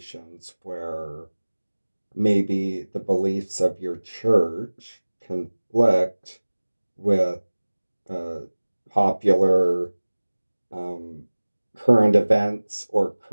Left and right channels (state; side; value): inverted; both; correlation -1.00